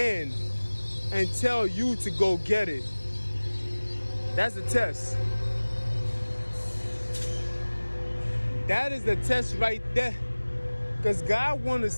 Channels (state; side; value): inverted; both; correlation -1.00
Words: and tell you to go get it. That's a test. That is the test right there. Because God want to